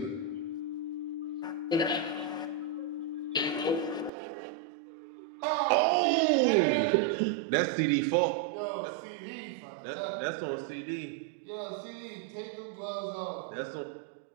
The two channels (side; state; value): left; drops out; at 4.1 s